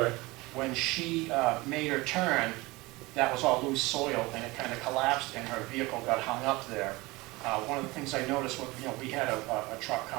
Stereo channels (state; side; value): quieter; left; 22.3 dB